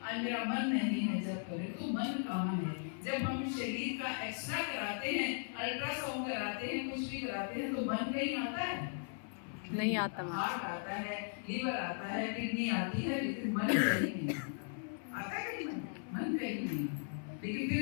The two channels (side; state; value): right; silent; 53 dB below the other